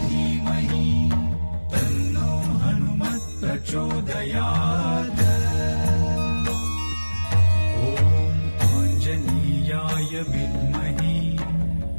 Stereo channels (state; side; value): inverted; both; correlation -1.00